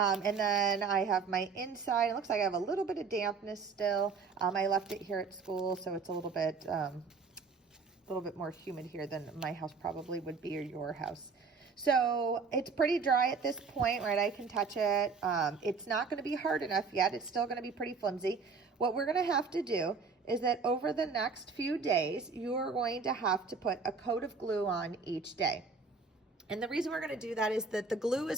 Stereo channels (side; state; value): left; quieter; 4.9 dB